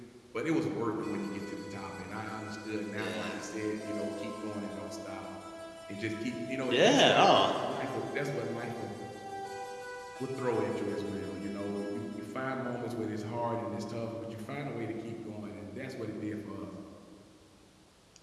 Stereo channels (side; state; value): both; identical; correlation 1.00